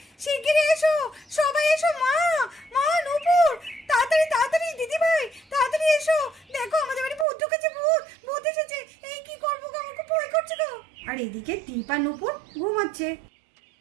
শিগগিরই এসো, সবাই এসো। মা, মা, নূপুর, তাড়াতাড়ি তাড়াতাড়ি, দিদি ভাই তাড়াতাড়ি এসো। দেখো আমাদের বাড়ি ভূত ঢুকেছে, ভূত ভূত এসেছে। এই কি করবো গো, আমার খুব ভয় করছে গো। আর এদিকে দীপ আর নূপুর ঘুমাচ্ছে।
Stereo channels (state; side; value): drops out; left; at 7.2 s